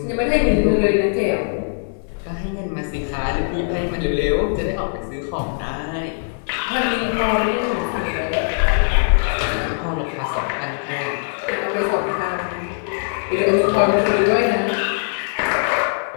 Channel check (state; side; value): silent; right; digital silence